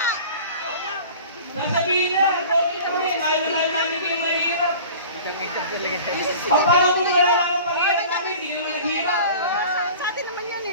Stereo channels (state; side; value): inverted; both; correlation -0.41